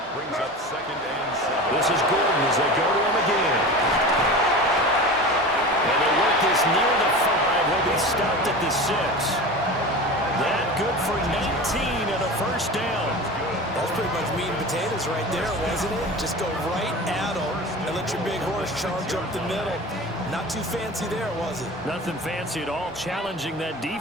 Brings up 2nd and 7. This is Gordon as they go to him again. And they work this near the 5. Will be stopped at the 6. That good for 19 and a first down. That's pretty much meat and potatoes right there, wasn't it? Just go right at them and let your big horse charge up the middle. Not too fancy there, was it? Nothing fancy at all, challenging that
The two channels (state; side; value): normal; both; correlation 0.32